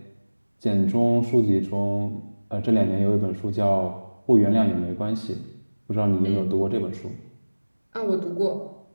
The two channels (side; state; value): both; inverted; correlation -1.00